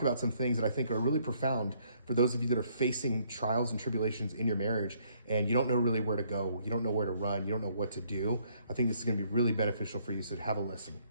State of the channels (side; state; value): both; inverted; correlation -0.67